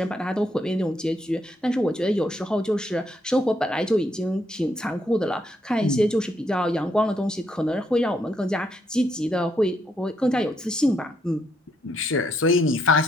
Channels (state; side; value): normal; both; correlation 0.75